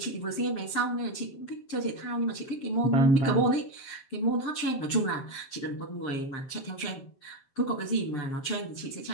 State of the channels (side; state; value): right; late; 7.5 ms